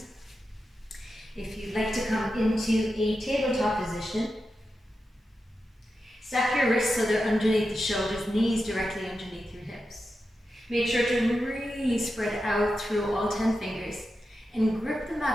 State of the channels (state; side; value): normal; both; correlation 0.90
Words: If you'd like to come into a tabletop position, stack your wrists so they're underneath the shoulders, knees directly underneath your hips. Make sure to really spread out through all 10 fingers and grip the